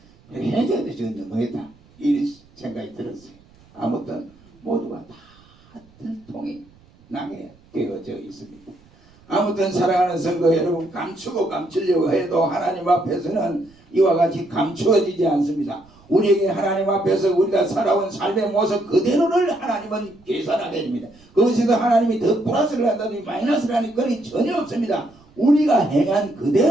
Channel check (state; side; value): noise; right; rumble, 28 dB below the sound